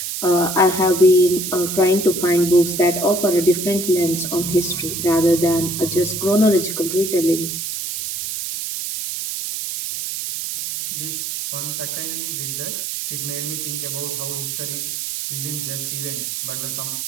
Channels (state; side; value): noise; right; hiss, 4 dB below the sound